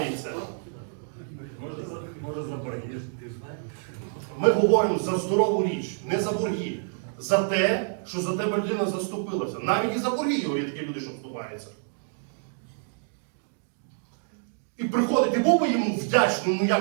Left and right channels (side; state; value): left; silent; digital silence